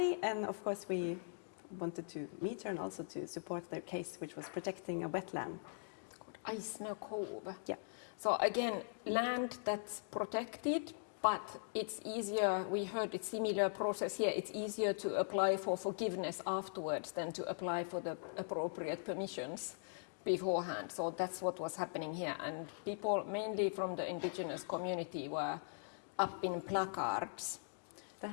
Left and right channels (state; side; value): silent; right; digital silence